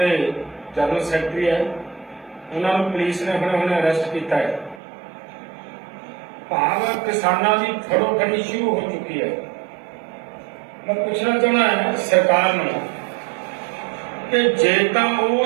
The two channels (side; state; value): left; drops out; at 4.8 s